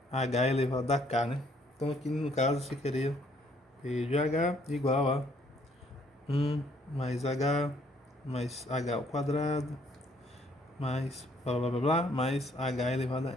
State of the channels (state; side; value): normal; both; correlation 0.65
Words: h elevado a k, né? Então aqui no caso você queria P de h igual a 1 mais h ao quadrado mais blá blá blá blá mais h elevado a n,